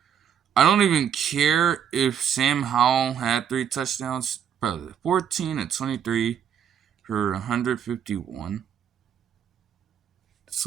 I don't even care if Sam Howell had 3 touchdowns. Probably 14 and 23. For 151. It's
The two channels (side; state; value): left; quieter; 8.5 dB